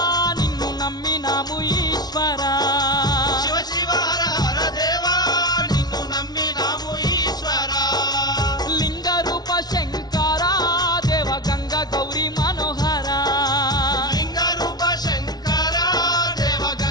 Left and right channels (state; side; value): late; right; 0.19 ms